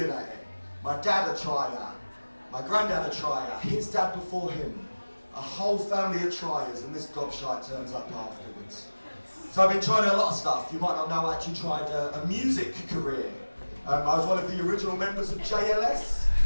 at it. My dad a trier, my granddad a trier, his dad before him, a whole family of triers, and this gobshite turns up afterwards. So I've been trying a lot of stuff. You might not know, I actually tried a music career. I was one of the original members of JLS.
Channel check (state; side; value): inverted; both; correlation -1.00